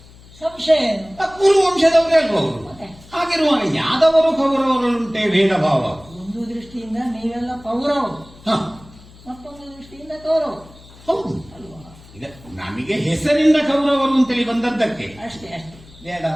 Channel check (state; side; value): noise; left; hum, 22 dB below the sound